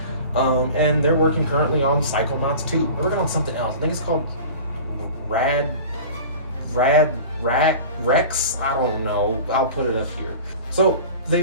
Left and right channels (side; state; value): both; inverted; correlation -0.38